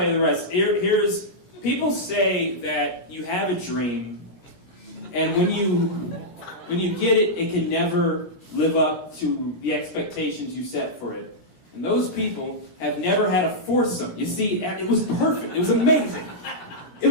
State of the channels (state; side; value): late; right; 17 ms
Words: you the rest. Here's people say that you have a dream, and when you get it, it can never live up to the expectations you set for it. And those people have never had a foursome. You see, it was perfect. It was amazing. It